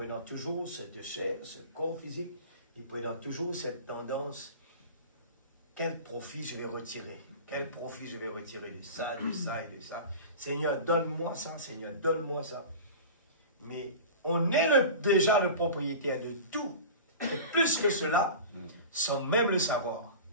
toujours cette chair, ce corps physique, et prenons toujours cette tendance, quel profit je vais retirer? Quel profit je vais retirer de ça, de ça et de ça? Seigneur, donne-moi ça, Seigneur, donne-moi ça. Mais on est déjà le propriétaire de tout. Et plus que cela, sans même le savoir.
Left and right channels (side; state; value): both; inverted; correlation -0.34